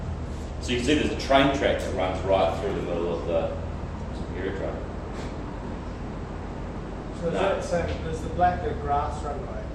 So you can see there's a train track that runs right through the middle of the aerodrome. So is that saying there's the black the grass runway?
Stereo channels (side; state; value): both; identical; correlation 1.00